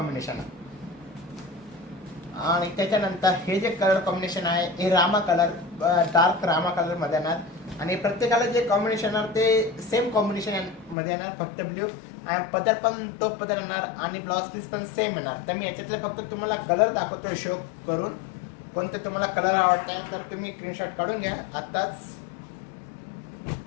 आहे. आणि त्याच्यानंतर हे जे कलर कॉम्बिनेशन आहे हे Rama colour, dark Rama colour मध्ये येणार. आणि प्रत्येकाला जे कॉम्बिनेशन येणार ते सेम कॉम्बिनेशन मध्ये येणार, फक्त ब्ल्यू. आणि पदर पण तो पदर येणार आणि ब्लाउज पीस पण सेम येणार. तर मी याच्यातले फक्त तुम्हाला कलर दाखवतो शो करून. कोणते तुम्हाला कलर आवडत तर तुम्ही स्क्रीनशॉट काढून घ्या आत्ताच.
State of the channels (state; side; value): drops out; right; at 11.0 s